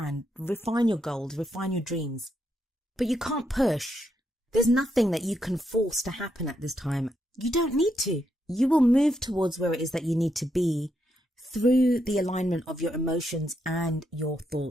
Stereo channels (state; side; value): normal; both; correlation 0.80